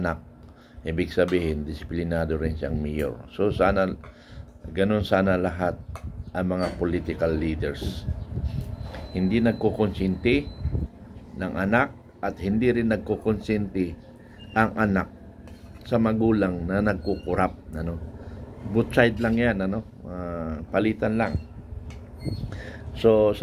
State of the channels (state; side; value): identical; both; correlation 1.00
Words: ibig sabihin, disiplinado rin siyang mayor. So, ganun sana lahat ang mga political leaders. Hindi nagkukonsinti ng anak at hindi rin nagkukonsinti ang anak sa magulang na nagkukurap, ano. Both side lang yan, ano. Palitan lang. So,